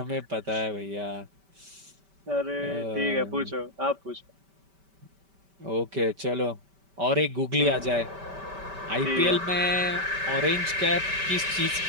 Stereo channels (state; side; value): late; left; 5.1 ms